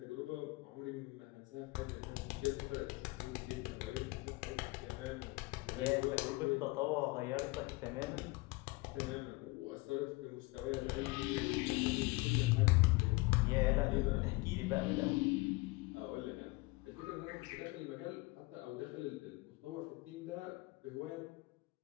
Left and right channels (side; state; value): right; quieter; 23.9 dB